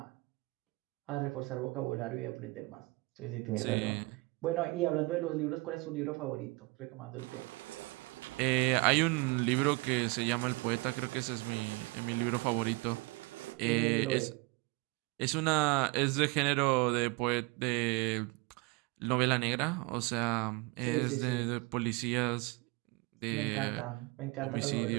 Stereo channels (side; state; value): left; quieter; 25.5 dB